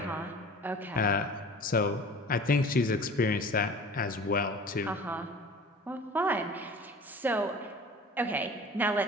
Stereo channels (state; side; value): normal; both; correlation 0.42